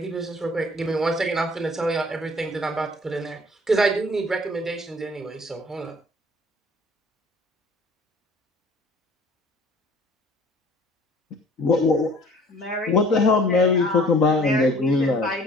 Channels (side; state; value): both; normal; correlation 0.51